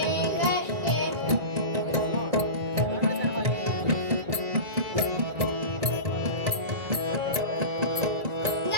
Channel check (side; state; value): left; late; 1.9 ms